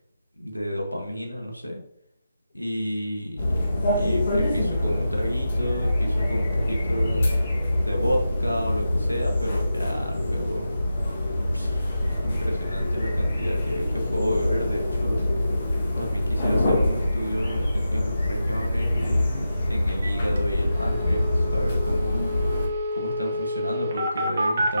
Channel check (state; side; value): inverted; both; correlation -0.89